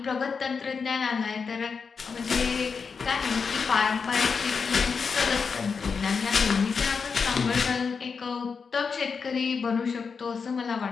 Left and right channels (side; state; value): right; quieter; 5.5 dB